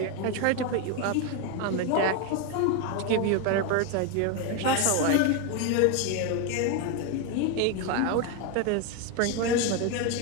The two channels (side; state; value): both; different; correlation 0.02